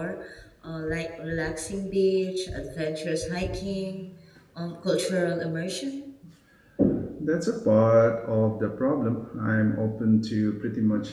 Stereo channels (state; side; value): identical; both; correlation 1.00